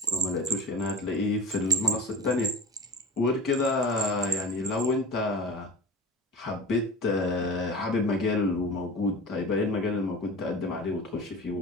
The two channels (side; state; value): both; normal; correlation 0.32